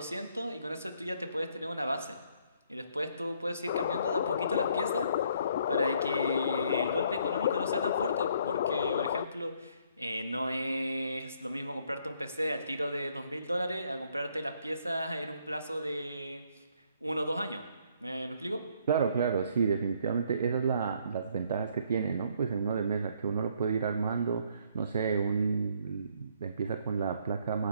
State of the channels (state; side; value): inverted; both; correlation -0.66